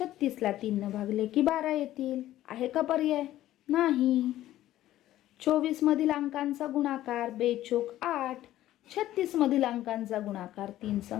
3 भागले की 12 येतील. आहे का पर्याय? नाही. 24 मधील अंकांचा गुणाकार बेचोक 8. 36 मधील अंकांचा गुणाकार 3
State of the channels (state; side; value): quieter; right; 14.0 dB